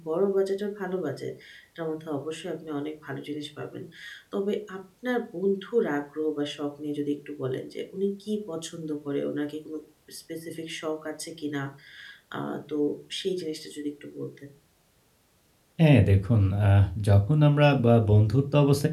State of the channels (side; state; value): both; identical; correlation 1.00